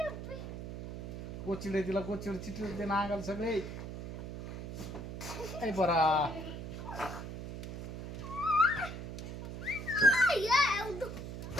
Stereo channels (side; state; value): right; noise; hum, 8 dB below the sound